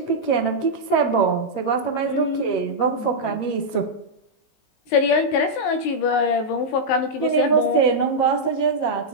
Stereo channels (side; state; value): right; late; 19 ms